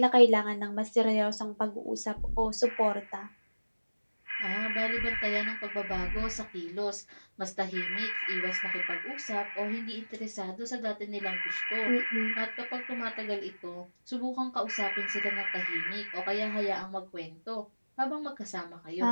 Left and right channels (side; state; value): both; inverted; correlation -1.00